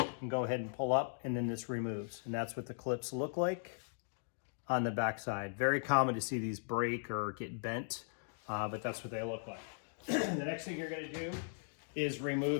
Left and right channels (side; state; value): right; silent; digital silence